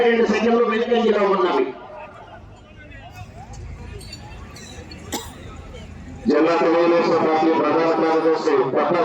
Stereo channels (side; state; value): both; identical; correlation 1.00